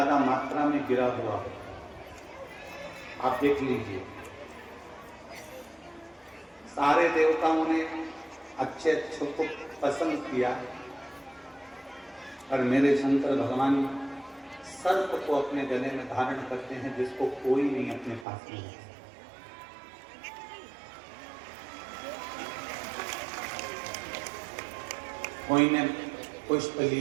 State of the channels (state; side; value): drops out; left; at 18.2 s